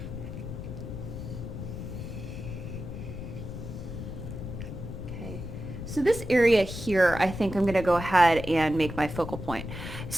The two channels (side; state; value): left; noise; rumble, 8 dB below the sound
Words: Okay, so this area here, I think I'm going to go ahead and make my focal point.